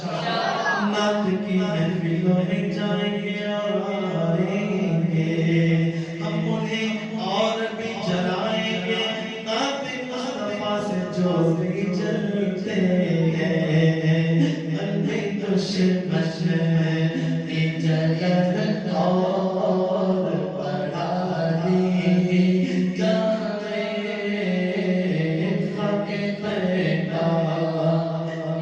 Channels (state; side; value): identical; both; correlation 1.00